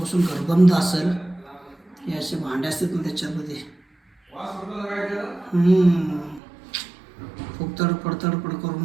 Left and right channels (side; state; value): left; drops out; at 6.4 s